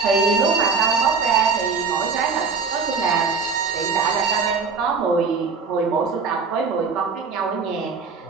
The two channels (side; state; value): left; quieter; 5.0 dB